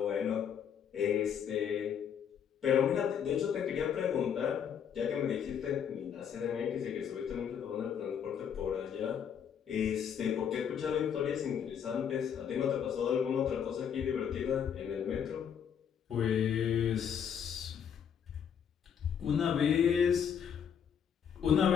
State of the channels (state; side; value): quieter; right; 8.0 dB